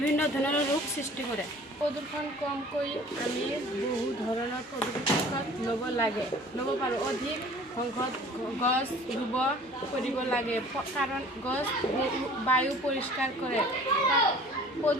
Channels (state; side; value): normal; both; correlation 0.48